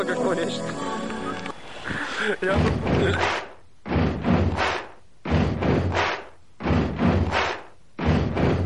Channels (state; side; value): identical; both; correlation 1.00